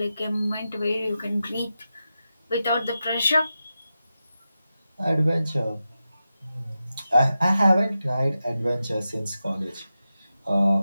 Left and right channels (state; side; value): inverted; both; correlation -0.91